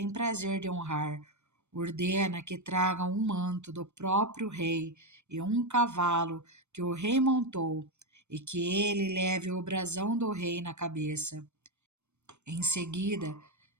prazer de honrar, ordena que tragam um manto do próprio rei e um cavalo que o rei montou, e que ele leve o brasão do rei na cabeça. Em seguida,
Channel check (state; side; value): late; left; 0.82 ms